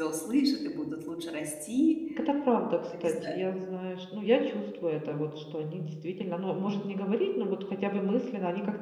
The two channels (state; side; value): identical; both; correlation 1.00